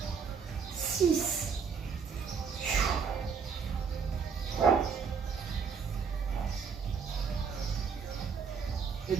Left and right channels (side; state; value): left; quieter; 6.0 dB